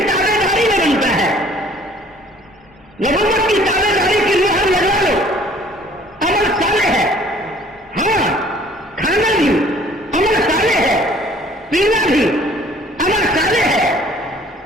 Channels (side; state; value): both; normal; correlation 0.55